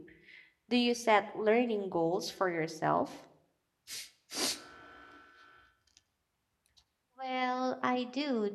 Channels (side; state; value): both; identical; correlation 1.00